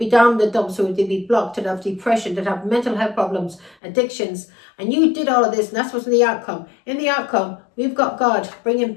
down in the dumps, so they'd be blocked, they'd have depression, they'd have mental health problems, addictions. And you did all of this, and that's what's in the outcome. In the outcome, we've got God bringing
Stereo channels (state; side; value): drops out; right; at 3.8 s